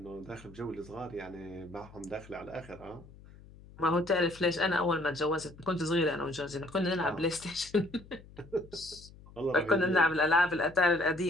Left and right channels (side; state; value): left; noise; hum, 21 dB below the sound